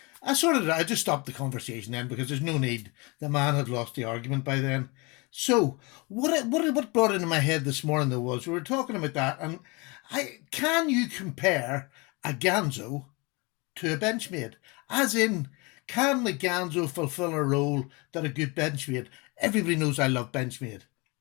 I just stopped the conversation then because there's no need. The man had lost the argument by then. So what brought into my head this morning, though, was we were talking about that, and can you compare a Ganzo to a Benchmade? As in, can the Ganzo fulfill a role that a good Benchmade? Everybody knows I love Benchmade.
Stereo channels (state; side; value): quieter; right; 27.5 dB